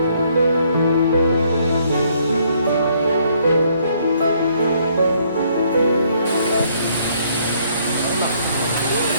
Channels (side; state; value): both; inverted; correlation -0.67